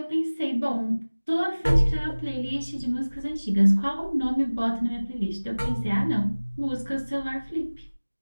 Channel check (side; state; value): both; inverted; correlation -1.00